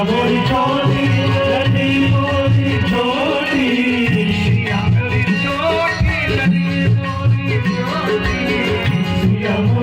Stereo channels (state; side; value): identical; both; correlation 1.00